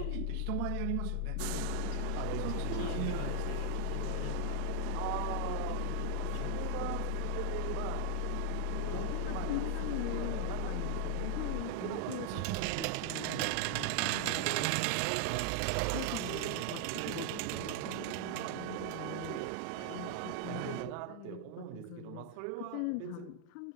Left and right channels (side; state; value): both; different; correlation 0.00